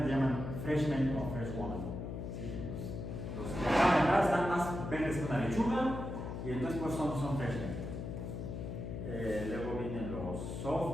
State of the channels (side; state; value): left; noise; hum, 6 dB below the sound